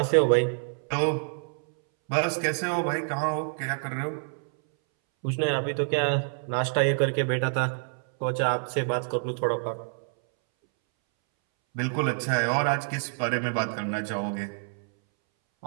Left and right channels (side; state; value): left; silent; 60 dB below the other